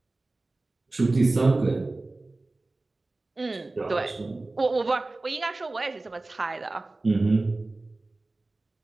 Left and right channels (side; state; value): left; quieter; 3.1 dB